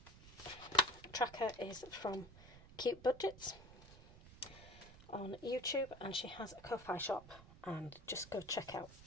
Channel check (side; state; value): right; noise; rumble, 18 dB below the sound